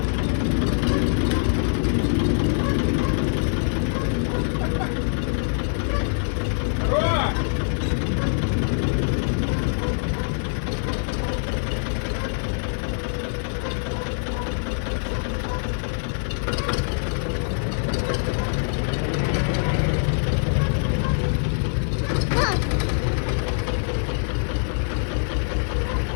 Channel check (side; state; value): right; silent; 63 dB below the other